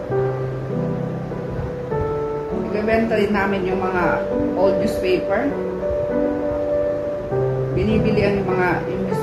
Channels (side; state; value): both; identical; correlation 1.00